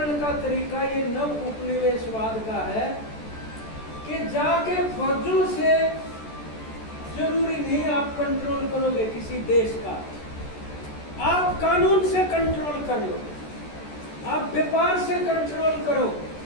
का तरीका ये नव उपनिवेशवाद का है कि जाके फौजों से जरूरी नहीं आप कंट्रोल करोगे किसी देश का, आप कानून से कंट्रोल कर लो, आप व्यापार से कंट्रोल करो,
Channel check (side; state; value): right; late; 14 ms